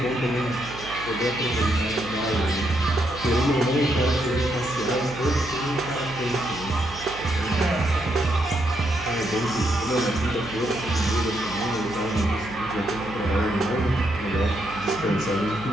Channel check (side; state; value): right; noise; hum, 15 dB below the sound